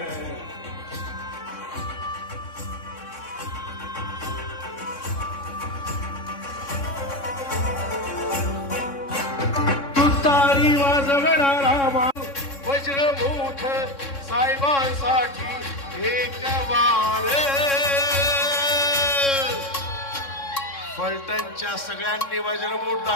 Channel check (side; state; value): right; late; 3.6 ms